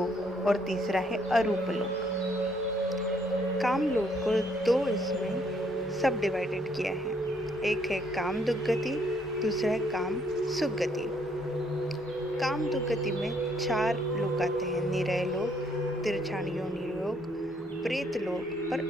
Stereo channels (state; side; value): normal; both; correlation 0.68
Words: और तीसरा है अरूप लोक। काम लोक को 2 इसमें सब डिवाइडेड किया है। एक है काम दुर्गति, दूसरा है काम सुगति। काम दुर्गति में 4 लोक आते हैं, निरय लोक, तिरछान योनि लोक, प्रेत लोक और